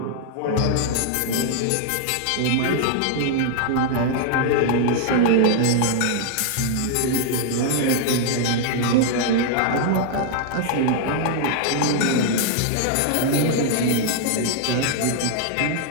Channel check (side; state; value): both; different; correlation 0.00